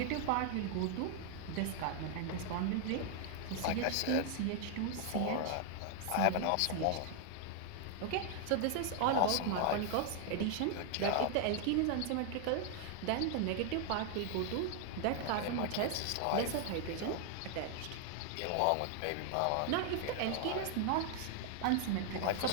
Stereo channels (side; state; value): both; different; correlation 0.00